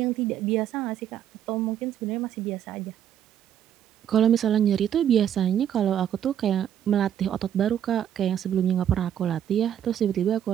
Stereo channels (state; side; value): quieter; left; 9.9 dB